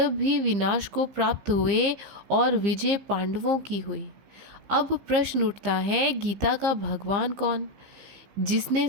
भी विनाश को प्राप्त हुए और विजय पांडवों की हुई। अब प्रश्न उठता है, गीता का भगवान कौन? जिसने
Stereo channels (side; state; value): left; late; 15 ms